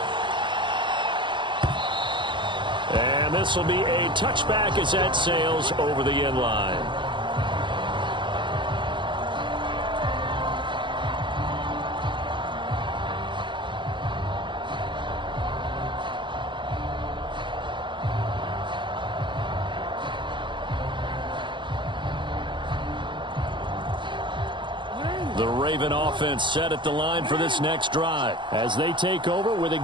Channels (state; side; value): late; left; 0.23 ms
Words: And this will be a touchback as that sails over the end line. The Raven offense set at the line for this next drive as they take over with